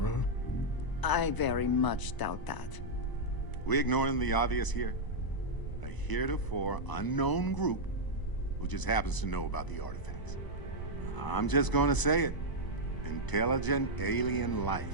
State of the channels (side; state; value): right; late; 1.0 ms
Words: I very much doubt that. We ignoring the obvious here? A heretofore unknown group who just happens to know about the artifacts. I'm just gonna say it. Intelligent alien life,